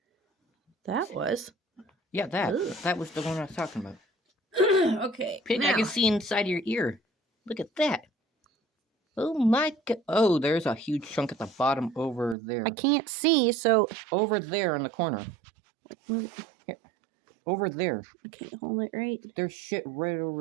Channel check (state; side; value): drops out; left; at 12.4 s